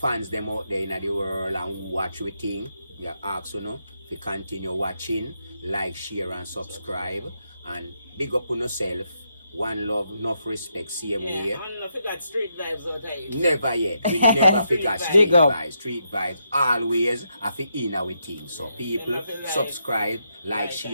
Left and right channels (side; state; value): both; inverted; correlation -0.81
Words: them out there in the world and watch we thing, we ask you know, to continue watching, like, share and subscribe, and big up on yourself. one love, enough respect, same way. Yeah, I don't forget street vibes out here. Never yet. We never forget street vibes. Street vibes always have to in our team. So people subscribe, like,